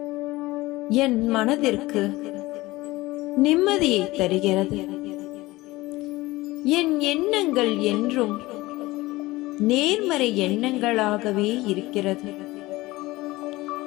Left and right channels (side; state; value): right; quieter; 19.6 dB